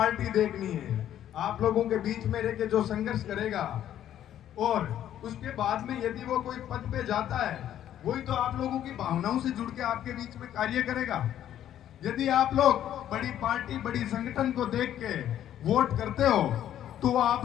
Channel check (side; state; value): right; quieter; 11.2 dB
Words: देखनी है। आप लोगों के बीच में रह के जो संघर्ष करेगा और उसके बाद में यदि वो कोई पद पे जाता है वही तो आप लोगों की भावनाओं से जुड़ के आपके बीच में कार्य करेगा। यदि आप लोग बड़ी पार्टी, बड़ी संगठन को देख के वोट करते हो तो वो आप